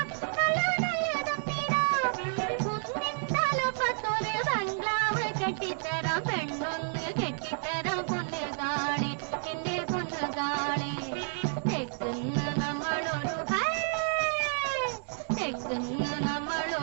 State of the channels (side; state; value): left; silent; digital silence